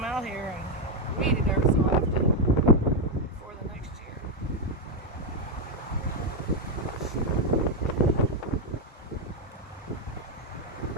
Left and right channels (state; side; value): normal; both; correlation 0.04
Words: out here and weed it every so often for the next year.